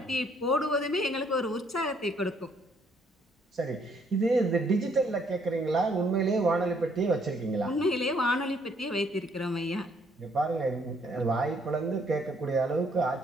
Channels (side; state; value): both; normal; correlation 0.67